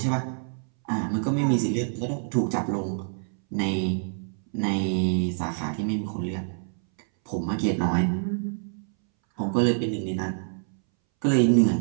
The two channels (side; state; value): left; silent; 61 dB below the other